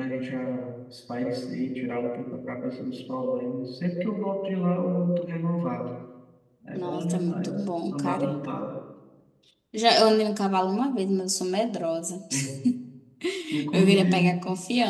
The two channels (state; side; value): identical; both; correlation 1.00